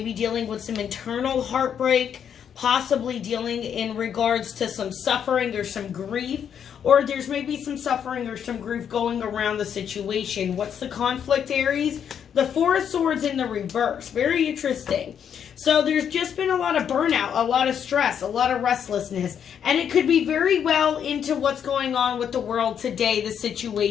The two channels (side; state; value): right; quieter; 8.3 dB